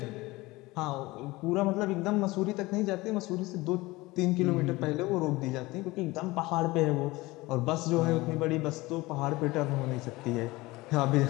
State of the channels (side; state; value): right; quieter; 20.7 dB